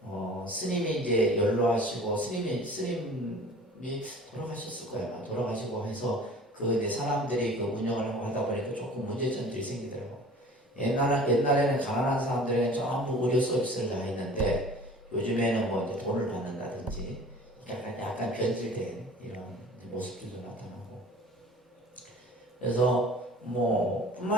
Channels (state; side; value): normal; both; correlation 0.45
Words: 스님이 이제 연로하시고 스님이 돌아가셨을 거예요. 돌아가시고 해서 그 이제 사람들이 그 운영을 하고 하다 보니까 조금 문제점들이 생기더라고. 옛날에는 가난한 사람들은 전부 의료 서비스를 다 했는데 요즘에는 뭐 이제 돈을 받는다든지 약간 변질된 이런 모습들도 나타나고. 그래서 뭐